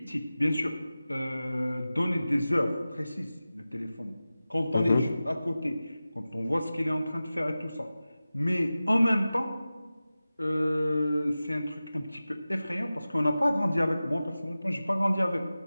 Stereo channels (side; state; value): both; inverted; correlation -0.96